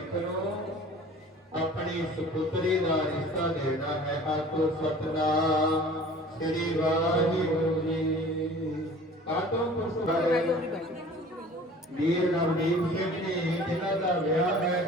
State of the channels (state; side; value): normal; both; correlation 0.46